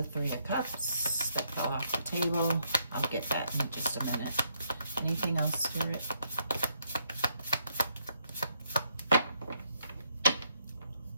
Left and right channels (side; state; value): both; inverted; correlation -0.74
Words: Three of Cups that fell off the table. I'll get that in just a minute. Anything else, Spirit?